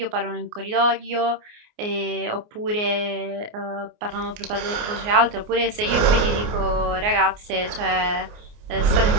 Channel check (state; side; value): late; left; 29 ms